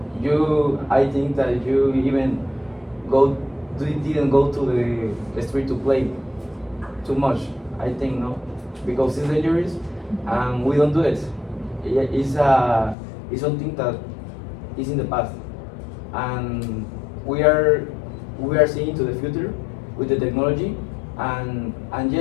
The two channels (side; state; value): right; drops out; at 13.0 s